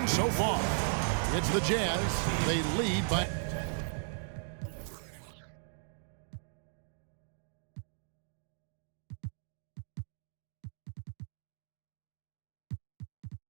so far. It's the Jazz. They lead by...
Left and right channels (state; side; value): silent; left; digital silence